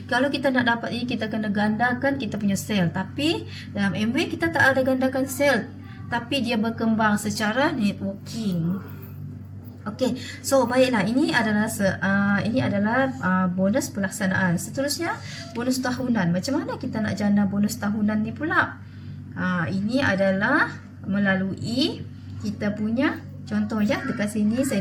kalau kita nak dapat ini, kita kena gandakan kita punya sale. Tapi dalam Amway kita tak ada gandakan sale, tapi dia berkembang secara networking. Okey, so baiklah, ini adalah bonus pelaksanaan. Seterusnya bonus tahunan. Macam mana kita nak jana bonus tahunan ni pula? Ini adalah melalui kita punya contoh ya, dekat sini saya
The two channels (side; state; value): both; identical; correlation 1.00